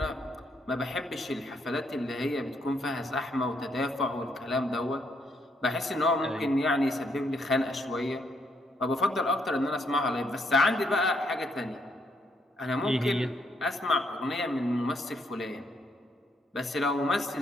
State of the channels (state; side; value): normal; both; correlation 0.74